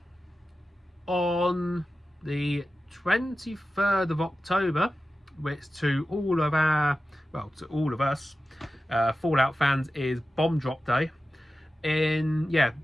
on the 23rd of October, which to all of our, well, to all of us Fallout fans is Bomb Drop Day. In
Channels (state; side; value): normal; both; correlation 0.94